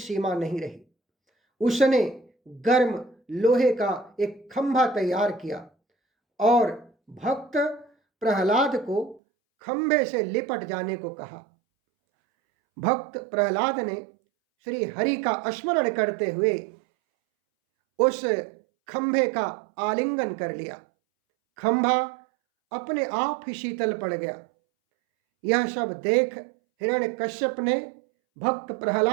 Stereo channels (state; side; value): drops out; left; at 9.2 s